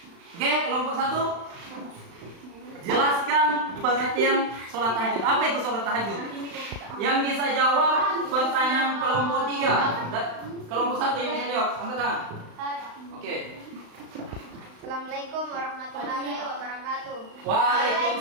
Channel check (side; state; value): left; late; 35 ms